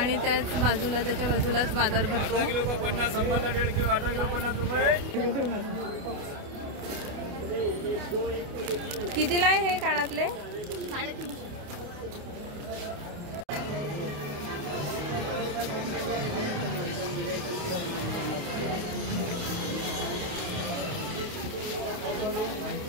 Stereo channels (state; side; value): late; left; 28 ms